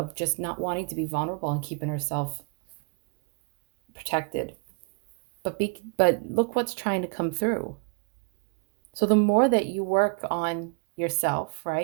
just not wanting to be vulnerable and keeping herself protected. But look what's trying to come through. So the more that you work on yourself,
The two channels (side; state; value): left; quieter; 36.2 dB